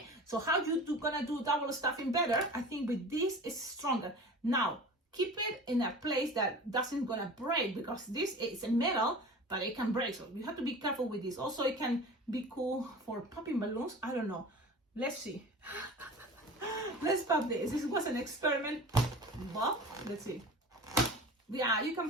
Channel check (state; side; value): normal; both; correlation 0.37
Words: so how you gonna do double stuffing better? I think with this is stronger. Now keep it in a place that doesn't gonna break, because this is a metal, but it can break, so you have to be careful with this. Also, it can be cool for popping balloons. I don't know, let's see. Let's pop this. This was an experiment. Well, let's see. Yeah, you